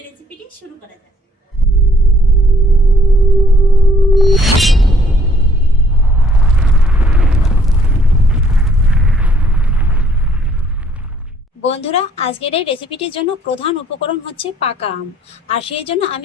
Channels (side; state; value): both; normal; correlation 0.63